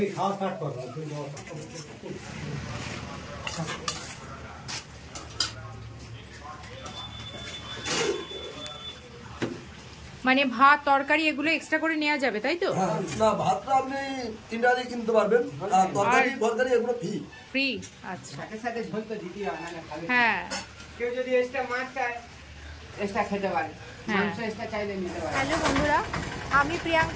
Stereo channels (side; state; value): both; identical; correlation 1.00